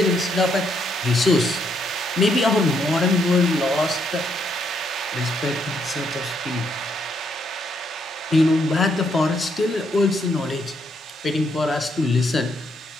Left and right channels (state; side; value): normal; both; correlation 0.74